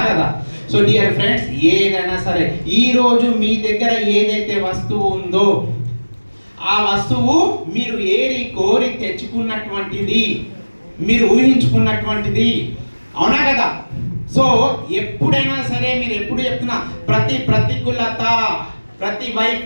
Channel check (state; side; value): inverted; both; correlation -1.00